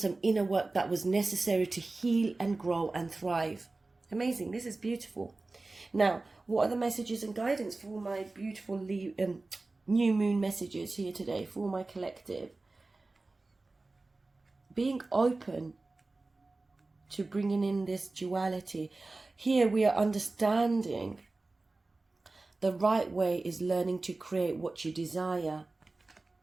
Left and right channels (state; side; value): quieter; left; 3.3 dB